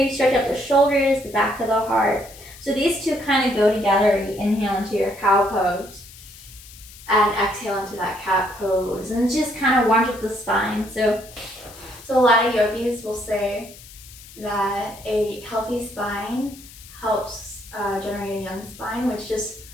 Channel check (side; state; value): left; noise; hiss, 19 dB below the sound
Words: stretch out the shoulders, the back of the heart. So these 2 kind of go together. You inhale into your cow pose and exhale into that cat pose. And just kind of warms up the spine. So a lot of yogis will say that a healthy spine helps generate a young spine, which just